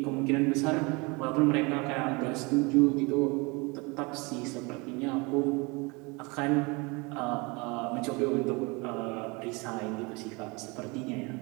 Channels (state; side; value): quieter; left; 27.7 dB